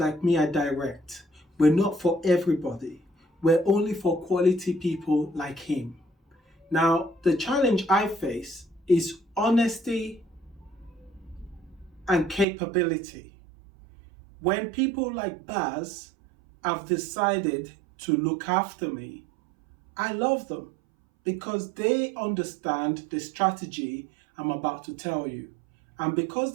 me are direct. We're not for everybody. We're only for quality people like him. Now, the challenge I face is honesty and capability. When people like Baz have decided to look after me, I love them because they understand the strategy I'm about to tell you. And because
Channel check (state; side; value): drops out; left; at 12.5 s